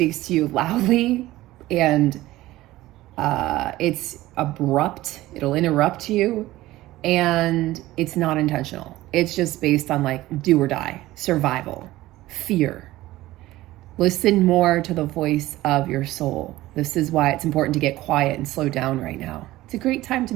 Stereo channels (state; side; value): quieter; left; 16.8 dB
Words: to you loudly, and it's abrupt. It'll interrupt you, and it's not intentional. It's just based on like do or die, survival, fear. Listen more to the voice of your soul. This is why it's important to get quiet and slow down right now. It's a great time to